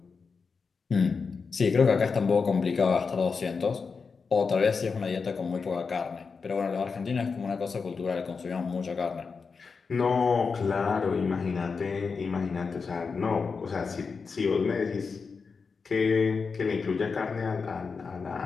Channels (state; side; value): quieter; right; 5.1 dB